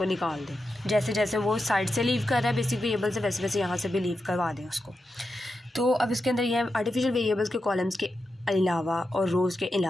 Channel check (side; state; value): both; normal; correlation 0.89